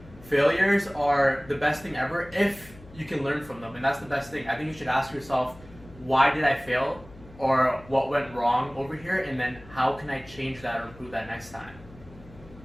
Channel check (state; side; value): noise; left; hum, 20 dB below the sound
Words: failures are the best thing ever if you can learn from them, and that's the best thing. I think you should ask yourself, why did I fail, or what went wrong over here, and then how can I change that or improve that next time?